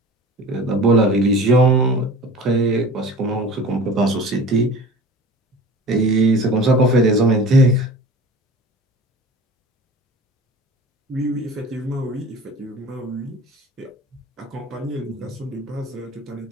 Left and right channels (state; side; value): normal; both; correlation 0.40